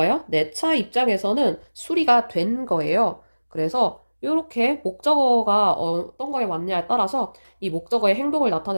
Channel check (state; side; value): inverted; both; correlation -1.00